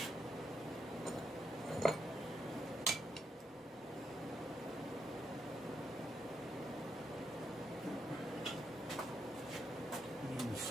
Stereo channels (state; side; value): normal; both; correlation 0.80